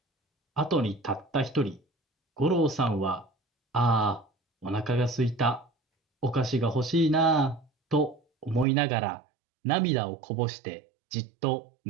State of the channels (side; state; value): left; drops out; at 8.7 s